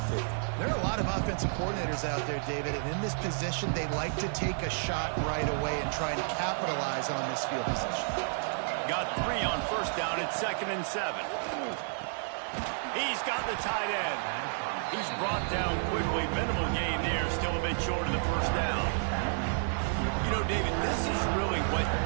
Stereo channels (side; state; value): left; silent; 57 dB below the other